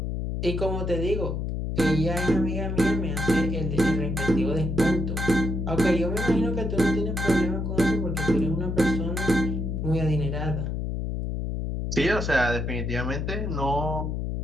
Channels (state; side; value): noise; left; hum, 2 dB below the sound